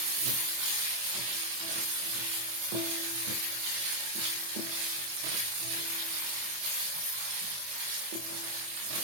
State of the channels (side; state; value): left; late; 24 ms